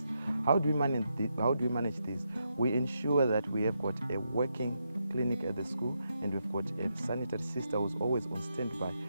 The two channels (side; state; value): both; inverted; correlation -0.82